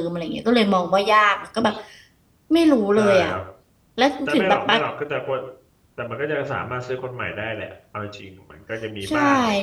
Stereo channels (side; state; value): both; identical; correlation 1.00